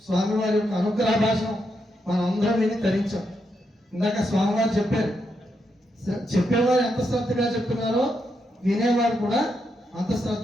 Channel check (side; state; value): both; normal; correlation 0.82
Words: స్వామివారి యొక్క అనుగ్రహ భాషను మనం అందరం విని తరించాం. ఇందాక స్వామివారు చెప్పారు, చెప్పేవారు ఎంత శ్రద్ధగా చెప్తున్నారో వినేవారు కూడా అంత